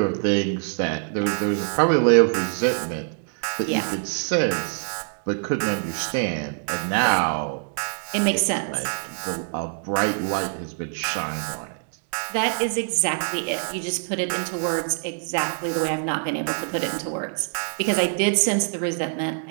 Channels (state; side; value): silent; left; 62 dB below the other